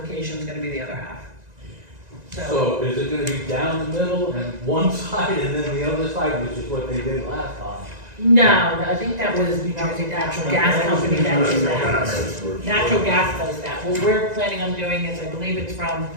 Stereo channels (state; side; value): late; left; 1.9 ms